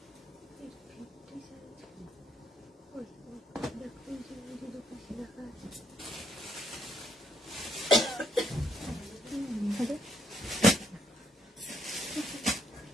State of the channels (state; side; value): normal; both; correlation 0.72